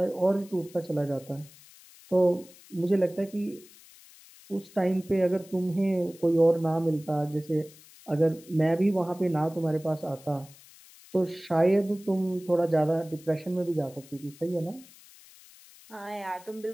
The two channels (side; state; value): left; noise; hiss, 23 dB below the sound